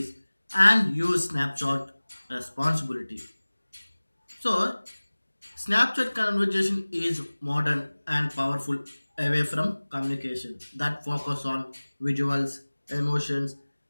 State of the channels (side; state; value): both; inverted; correlation -1.00